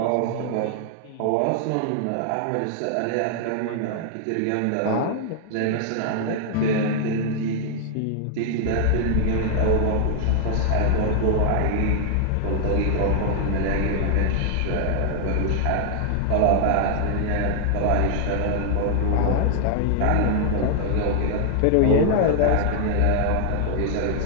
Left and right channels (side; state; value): both; different; correlation 0.00